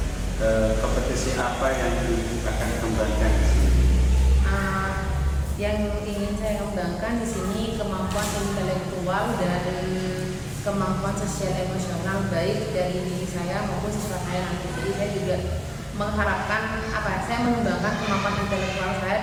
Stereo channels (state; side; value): identical; both; correlation 1.00